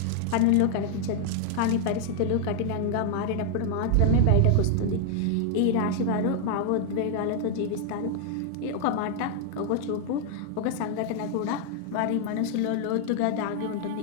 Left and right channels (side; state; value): both; different; correlation 0.00